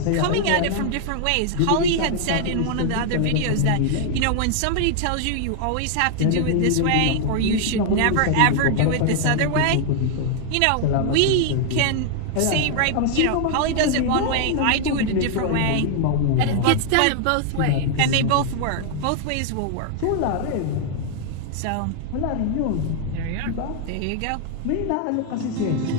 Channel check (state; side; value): different; both; correlation 0.00